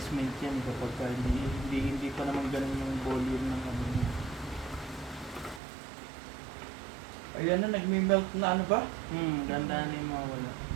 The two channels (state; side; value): drops out; left; at 5.6 s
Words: yan kapag hindi pa naman ganun yung volume ng ano niya. Ayan na, nagme-melt na ano ba? Ganda na yung mawala.